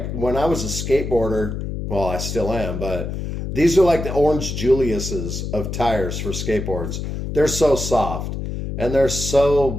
when I was a skateboarder, well, I still am, but these are like the Orange Julius's of tires for skateboards. They're so soft, and they're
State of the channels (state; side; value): noise; left; hum, 5 dB below the sound